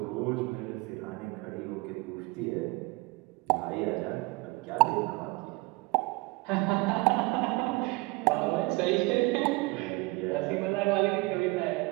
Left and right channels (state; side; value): quieter; left; 24.6 dB